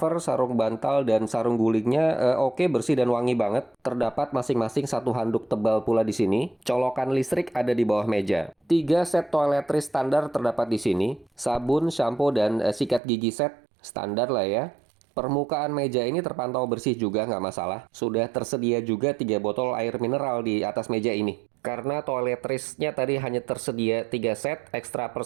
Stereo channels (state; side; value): drops out; left; at 13.0 s